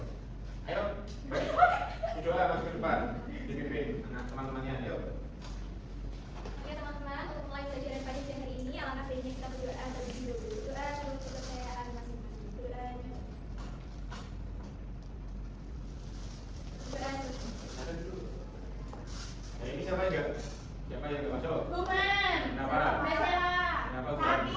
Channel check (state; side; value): identical; both; correlation 1.00